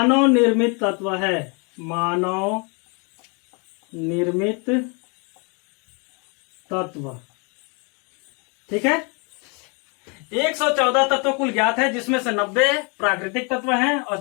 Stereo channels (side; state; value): right; quieter; 33.3 dB